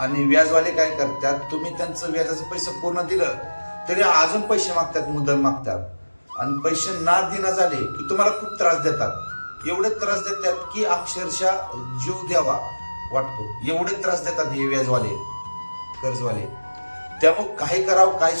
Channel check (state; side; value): inverted; both; correlation -1.00